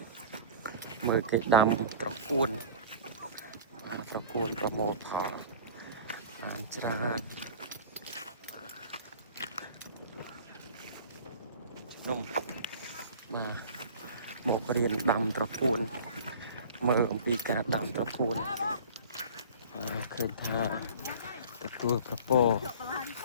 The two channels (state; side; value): inverted; both; correlation -0.40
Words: មើលគេដាំត្រកួនបាទត្រកួនប្រមូលផលបានច្រើនជំនុំបាទមករៀនដាំត្រកួនមើលអំពីការដាំត្រកួនឃើញថាទទួលប្រពោ